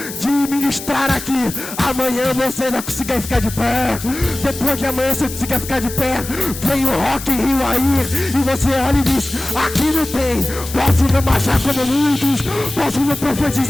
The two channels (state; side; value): noise; left; hiss, 11 dB below the sound